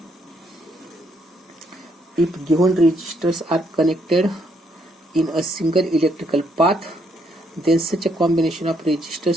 If given resistors are connected in a single electrical path, then such a combination of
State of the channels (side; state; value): both; normal; correlation 0.73